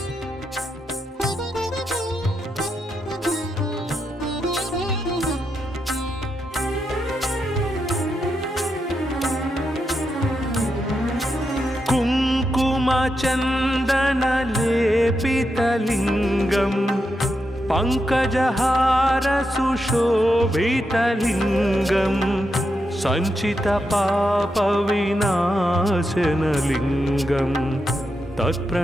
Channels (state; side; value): normal; both; correlation 0.85